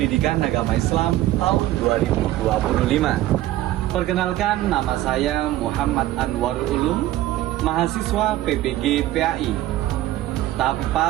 Agama Islam tahun 2025. Perkenalkan, nama saya Muhammad Anwarul Ulum, mahasiswa PPG PAI tahap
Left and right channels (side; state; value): left; quieter; 15.0 dB